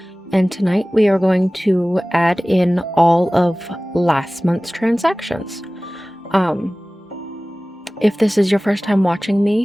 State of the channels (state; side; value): normal; both; correlation 0.98